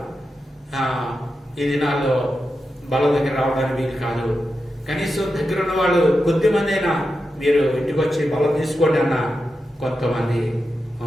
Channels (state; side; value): normal; both; correlation 0.89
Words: ఈ దినాల్లో బల దగ్గర రావడానికి వీలు కాదు. కనీసం దగ్గర ఉన్న వాళ్ళు కొద్దిమంది అయినా మీరు ఇంటికి వచ్చి బలం తీసుకోండి అన్న కొంతమంది